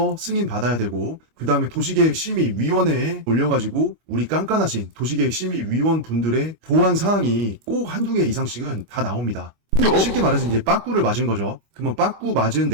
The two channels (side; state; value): left; late; 26 ms